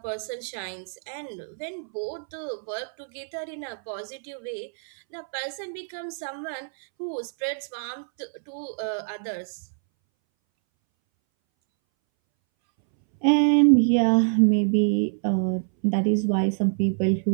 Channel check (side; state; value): left; silent; 61 dB below the other